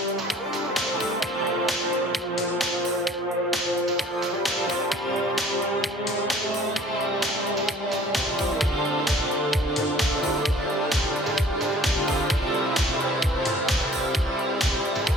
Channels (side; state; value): both; normal; correlation 0.53